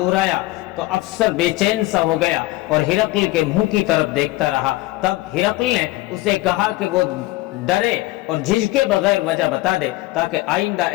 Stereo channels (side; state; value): right; quieter; 18.9 dB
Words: تو افسر بے چین سا ہو گیا اور ہرقل کے منہ کی طرف دیکھتا رہا۔ تب ہرقل نے اسے کہا کہ وہ ڈرے اور جھجکے بغیر وجہ بتا دے تاکہ آئندہ